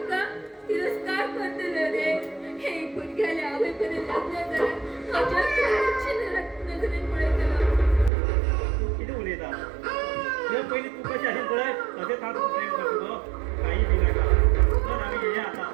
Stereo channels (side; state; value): left; drops out; at 8.1 s